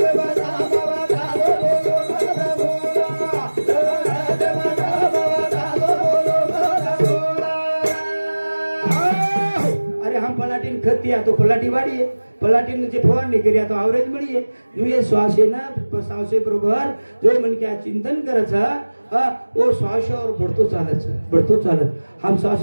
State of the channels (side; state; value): both; inverted; correlation -1.00